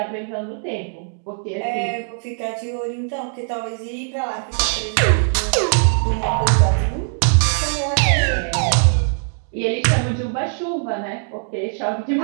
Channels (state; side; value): silent; left; 65 dB below the other